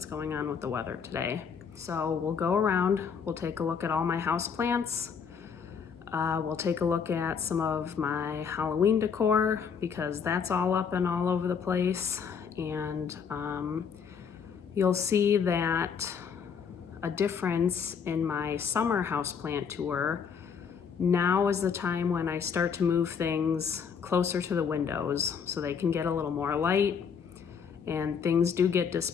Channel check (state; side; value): quieter; right; 6.6 dB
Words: going on with the weather today. So we'll go around, we'll take a look at all my house plants. We'll take a look at some of my Halloween decor because that's all up and all over the place. And you'll see that a difference in my summer houseplant tour. Now is the time when I start to move things closer to the windows so they can get a little more light, and things do get